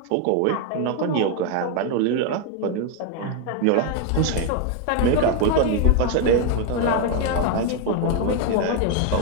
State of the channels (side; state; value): both; different; correlation 0.01